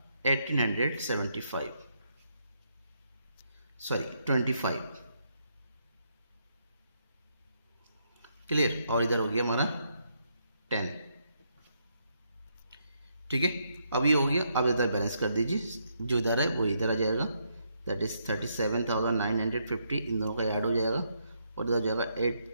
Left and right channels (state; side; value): inverted; both; correlation -0.77